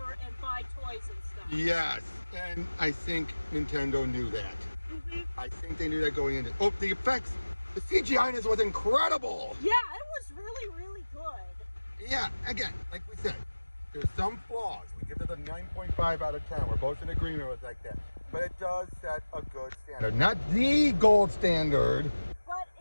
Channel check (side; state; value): both; inverted; correlation -1.00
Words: and buy toys and stuff. Yes, and I think Nintendo knew that. Mm-hmm. I think they knew that going into... Oh, the effects! The CGI in this was incredible! Yeah, it was really, really good. Yeah, again, like we said, there's some flaws. We give it a 9.5 out of 10. We're both in agreement with like that. But it does set a good standard. Not the gold standard. But